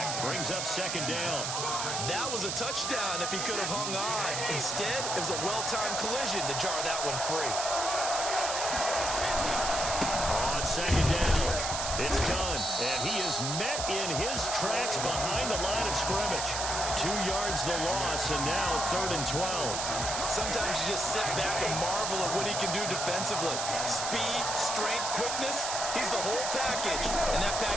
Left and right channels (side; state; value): right; noise; hiss, 2 dB below the sound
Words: Brings up 2nd down. That was a touchdown if he could have hung on. Instead, it was a well-timed collision to jar that one free. On 2nd down, it's done. And he is met in his tracks behind the line of scrimmage. 2 yards the loss, and now 3rd and 12. Sometimes you just sit back and marvel at what he can do defensively. Speed, strength, quickness, he's the whole package. And that